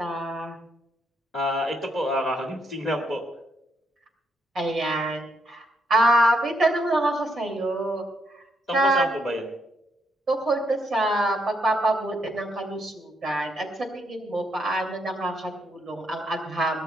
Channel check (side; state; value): both; normal; correlation 0.76